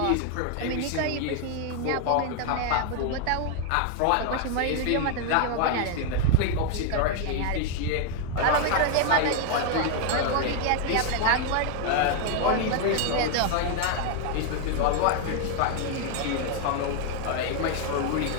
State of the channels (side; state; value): both; different; correlation 0.00